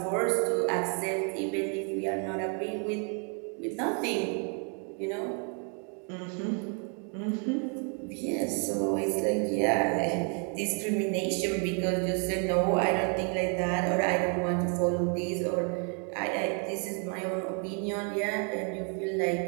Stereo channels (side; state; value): left; quieter; 39.9 dB